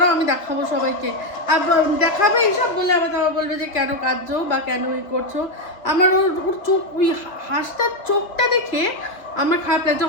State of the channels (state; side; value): late; right; 2.5 ms